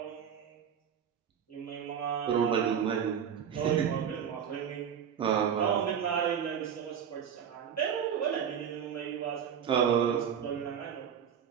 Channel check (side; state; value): left; quieter; 8.1 dB